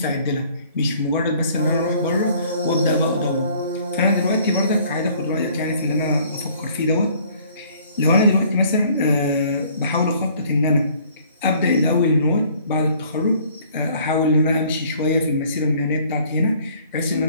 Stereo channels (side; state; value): both; inverted; correlation -0.57